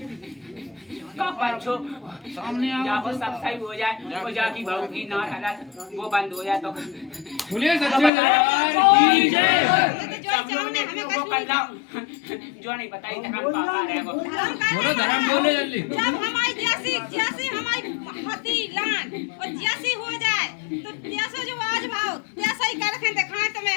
पंचो सामने जाओ सब सही हो जाए और जाकी बहू की ना हालत वो बंद हो जाए तो बोले सच्चे दरबार की जय। जो नहीं बताई धर्म पापा रहेगो। बोलो धर्म बोले जल्दी। जब हमारी जैसी हमारी हती लान और जैसी हो जाए तो जैसा जो आज भाव जैसा ही कर रखे दिखाए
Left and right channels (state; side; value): drops out; right; at 8.1 s